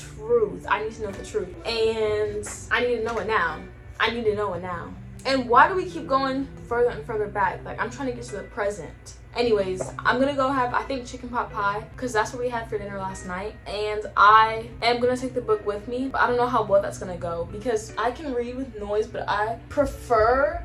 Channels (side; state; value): both; identical; correlation 1.00